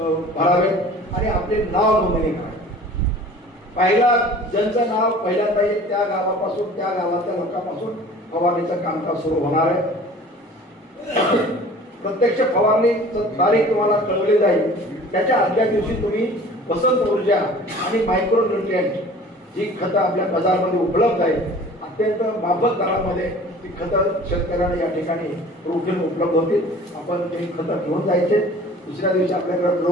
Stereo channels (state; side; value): normal; both; correlation 0.45